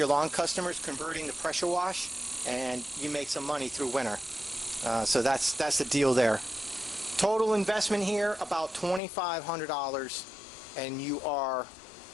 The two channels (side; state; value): right; drops out; at 9.0 s